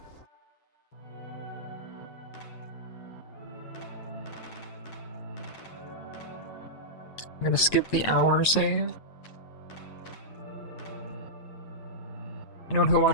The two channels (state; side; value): late; right; 9.0 ms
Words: I'm gonna skip the hour save. Anyone who